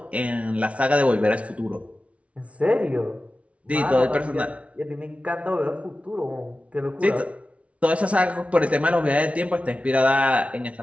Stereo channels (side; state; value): left; late; 0.063 ms